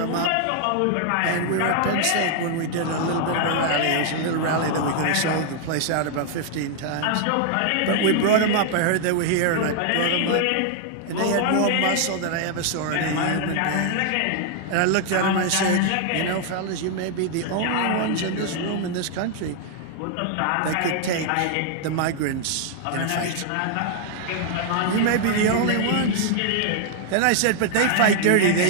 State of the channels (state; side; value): different; both; correlation 0.00